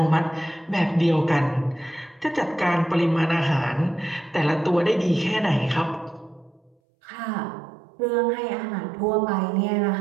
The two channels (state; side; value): drops out; left; at 6.8 s